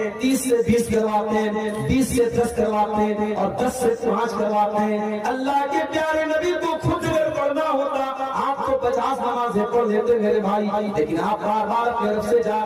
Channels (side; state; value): both; identical; correlation 1.00